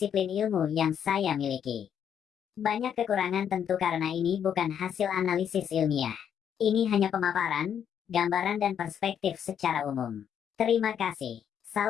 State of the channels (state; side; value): quieter; right; 8.6 dB